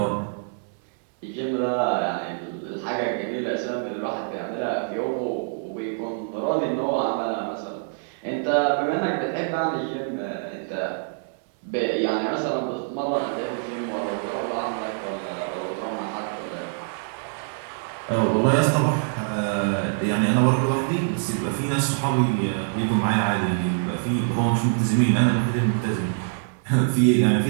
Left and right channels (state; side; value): silent; left; 62 dB below the other